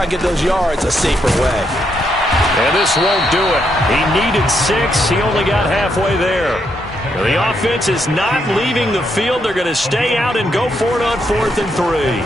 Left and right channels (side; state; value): both; normal; correlation 0.78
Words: and get those yards a safer way. And this won't do it. He needed 6. He only got halfway there. The offense is not leaving the field. They're going to stay out and go for it on 4th and 3.